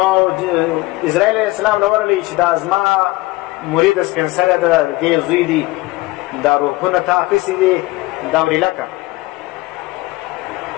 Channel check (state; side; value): quieter; right; 20.6 dB